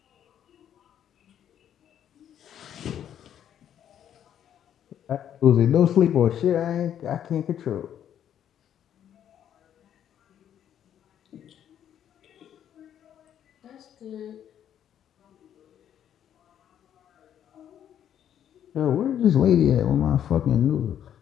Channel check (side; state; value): right; quieter; 9.9 dB